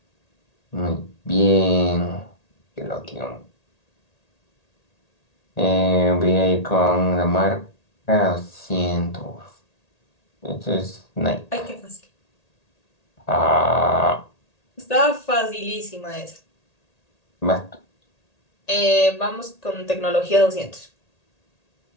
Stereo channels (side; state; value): right; late; 1.8 ms